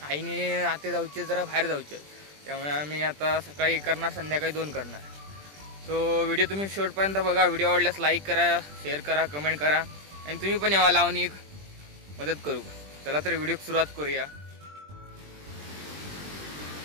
आते जाऊचे जरा बाहेर जाऊचे, त्यामुळे आम्ही आता सकाळी करणार, संध्याकाळी 2 करणार. सो व्हिडिओ तुम्ही शेवटपर्यंत बघा. व्हिडिओ आवडल्यास लाईक करा, शेअर करा, कमेंट करा आणि तुम्ही पण यावा लावून मदत करू. चला तर व्हिडिओ सुरुवात करूया.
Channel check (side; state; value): left; late; 20 ms